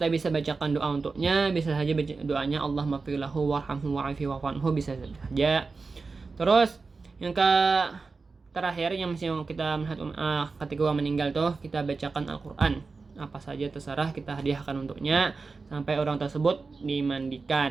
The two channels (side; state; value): left; quieter; 4.2 dB